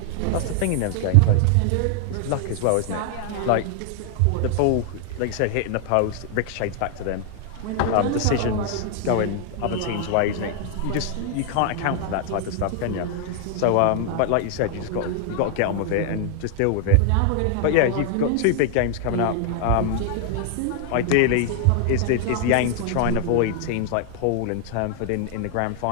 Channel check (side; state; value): both; different; correlation 0.00